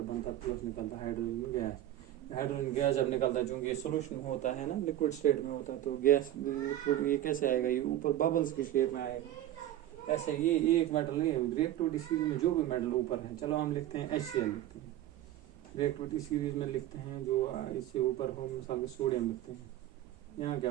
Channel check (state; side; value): quieter; left; 13.0 dB